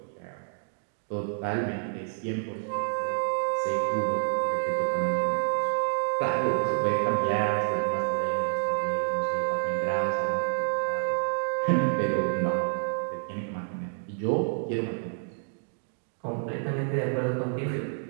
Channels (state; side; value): silent; left; digital silence